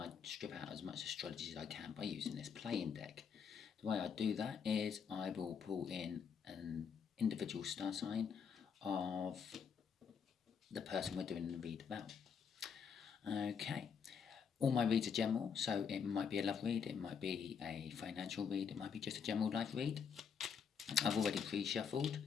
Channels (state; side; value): quieter; right; 6.7 dB